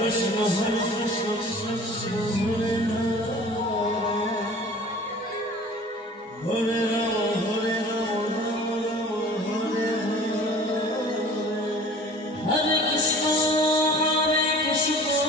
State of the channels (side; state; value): both; normal; correlation 0.45